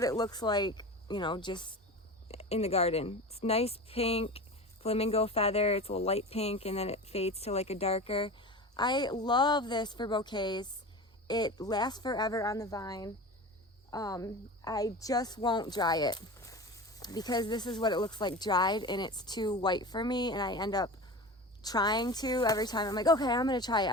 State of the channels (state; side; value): normal; both; correlation 0.31